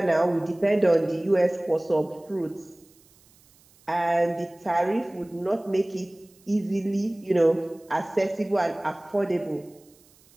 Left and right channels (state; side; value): noise; right; hiss, 30 dB below the sound